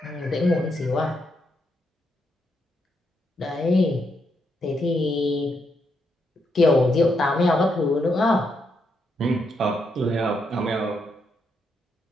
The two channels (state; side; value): normal; both; correlation 0.79